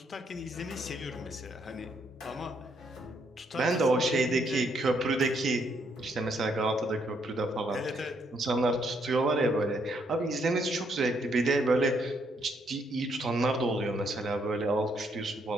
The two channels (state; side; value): normal; both; correlation 0.73